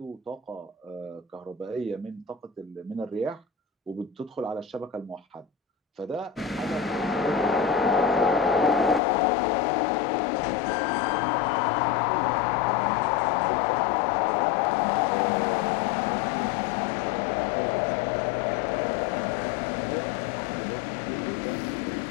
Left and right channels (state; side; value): drops out; right; at 9.0 s